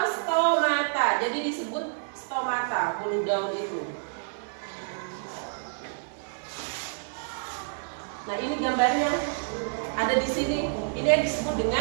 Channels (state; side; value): silent; left; 59 dB below the other